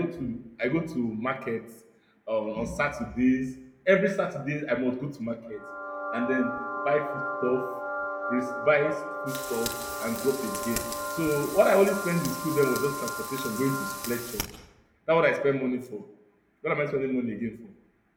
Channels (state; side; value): identical; both; correlation 1.00